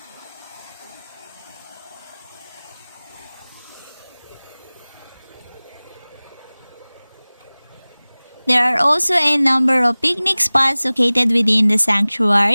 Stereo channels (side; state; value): both; inverted; correlation -1.00